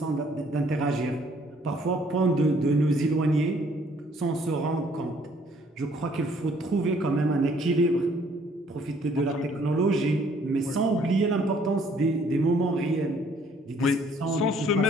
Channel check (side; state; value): both; normal; correlation 0.62